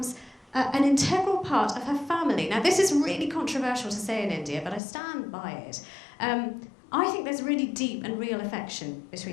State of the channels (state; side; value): drops out; right; at 4.8 s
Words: an integral part of her family. Now, this is really controversial to say in India, but I stand by it. I think there's really deep and real affection